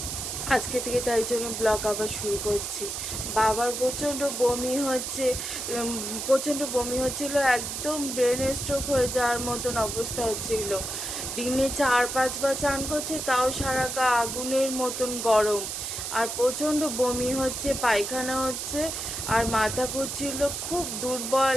আজকে থেকে তাই জন্য ব্লগ আবার শুরু করছি। বাবার প্রচণ্ড বমি হচ্ছে, প্রচণ্ড বমি হচ্ছিল, একদম ব্রেন স্ট্রোক হয়ে যাওয়ার মতন অবস্থা হচ্ছিল। দিনে 4-5 বার চান করছে, তাও সারা গা আগুনের মতন গরম, আর প্রচণ্ড বমি হচ্ছে, পায়খানা হচ্ছে, আর মাথা ঘুরছিল, খুব দুর্বল,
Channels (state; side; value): noise; right; hiss, 4 dB below the sound